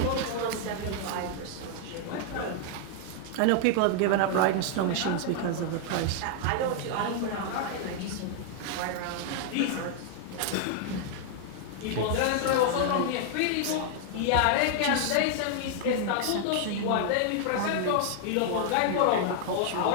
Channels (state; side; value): different; both; correlation 0.00